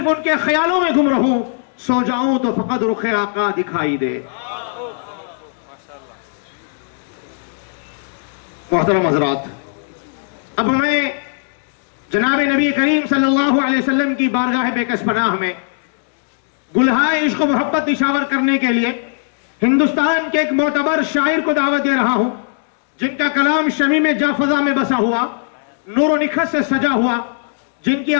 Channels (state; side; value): silent; right; digital silence